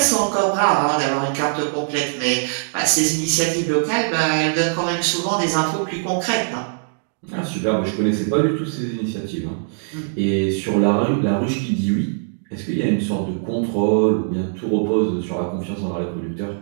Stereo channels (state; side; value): silent; left; digital silence